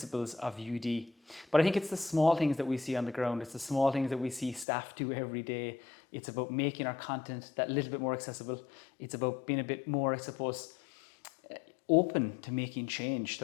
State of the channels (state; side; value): drops out; right; at 4.7 s